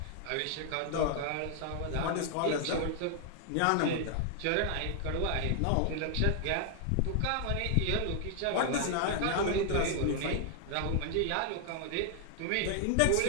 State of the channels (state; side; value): different; both; correlation 0.00